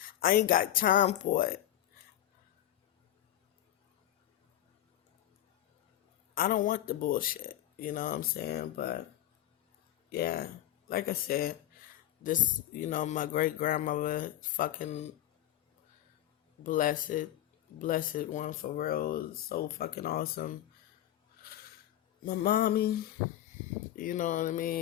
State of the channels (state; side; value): quieter; right; 12.9 dB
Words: I ain't got time for it. I don't want the bullshit. You know what I'm saying? But yeah, like I said, this, my great grandmother, fucking blessed one for real, so fucking awesome. My mommy, you know what I